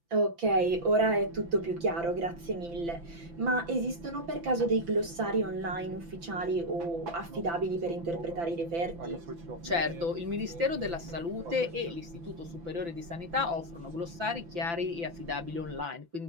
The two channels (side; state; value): left; late; 5.9 ms